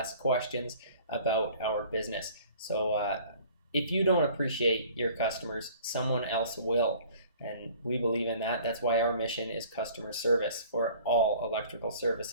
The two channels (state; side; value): inverted; both; correlation -0.50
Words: questions about our business. So if you don't appreciate your customers, someone else will. And we believe in that. That's why our mission is customer service for all electrical